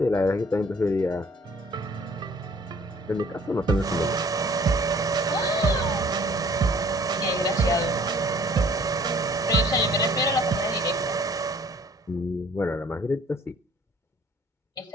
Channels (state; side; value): normal; both; correlation 0.55